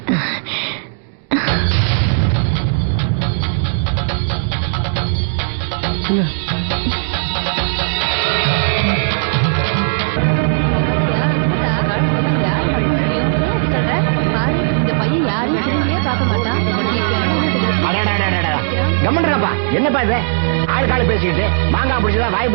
என்னப்பா இது ஆளுக்காளு பேசிக்கிட்டு மாங்காய் பிடிச்சதா வாய்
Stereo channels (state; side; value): silent; left; digital silence